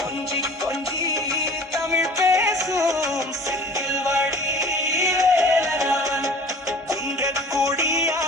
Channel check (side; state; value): both; normal; correlation 0.45